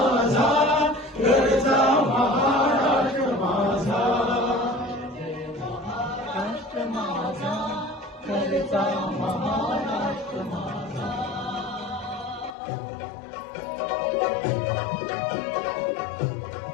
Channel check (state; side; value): drops out; right; at 12.6 s